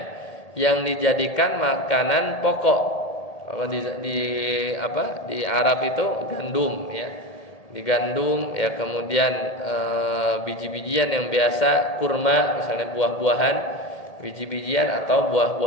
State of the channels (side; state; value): right; late; 1.8 ms